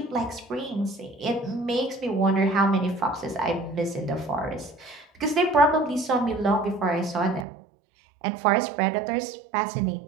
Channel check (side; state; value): left; drops out; at 7.5 s